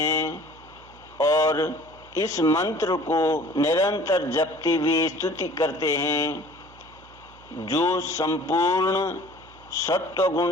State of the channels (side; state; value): right; noise; hum, 24 dB below the sound